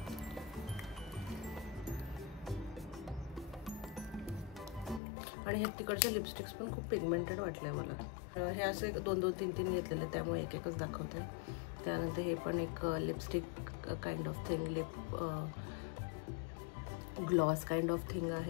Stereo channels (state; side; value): drops out; right; at 5.0 s